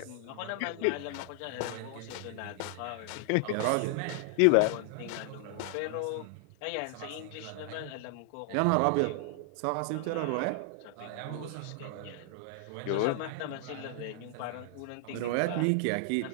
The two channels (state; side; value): different; both; correlation 0.00